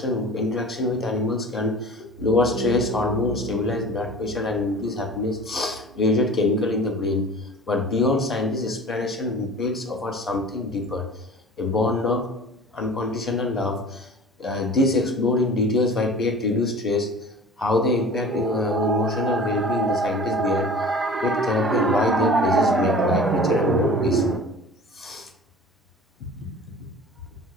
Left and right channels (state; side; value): normal; both; correlation 0.41